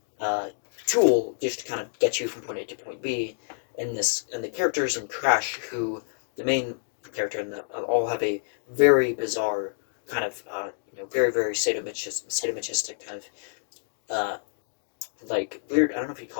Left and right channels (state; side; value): silent; right; digital silence